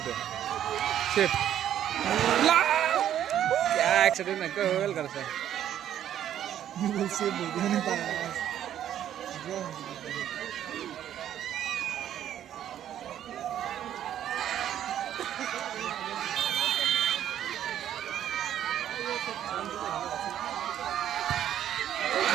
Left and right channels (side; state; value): left; quieter; 10.8 dB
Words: save क्या एक्सिडेन्ट न गोल गर्छ गोल सेभ हुँदैन त